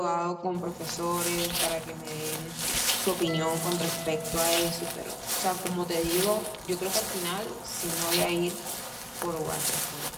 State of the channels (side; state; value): both; identical; correlation 1.00